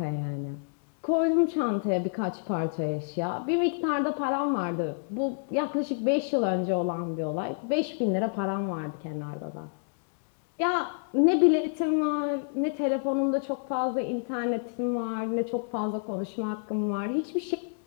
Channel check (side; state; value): right; silent; digital silence